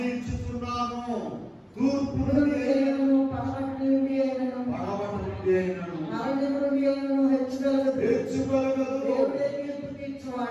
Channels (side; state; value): both; identical; correlation 1.00